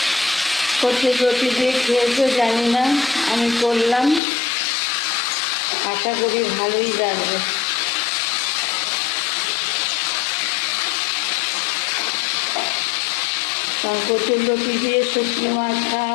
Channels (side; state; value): right; drops out; at 4.2 s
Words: কচুর লতি দিয়ে খেয়েছো জানি না, আমি করলাম, আশা করি ভালোই লাগবে। কচুর লতি দিয়ে শুটকি মাছ